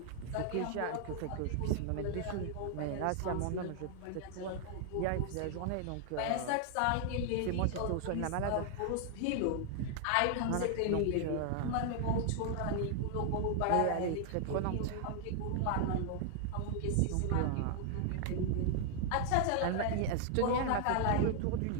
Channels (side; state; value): both; different; correlation 0.00